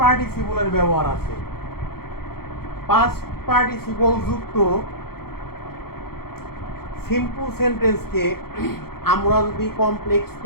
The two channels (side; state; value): right; late; 0.94 ms